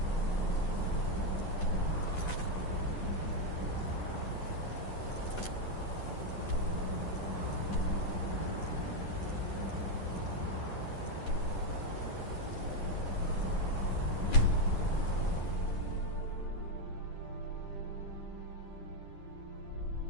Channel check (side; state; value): right; late; 10 ms